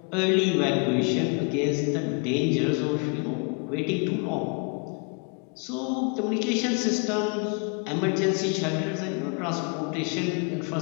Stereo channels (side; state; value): right; quieter; 36.7 dB